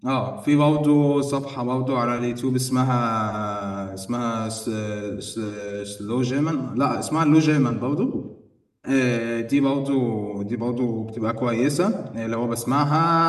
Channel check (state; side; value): identical; both; correlation 1.00